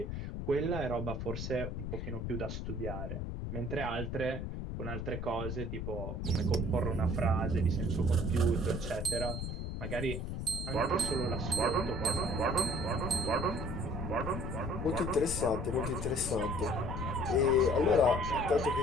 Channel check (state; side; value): noise; left; rumble, 4 dB below the sound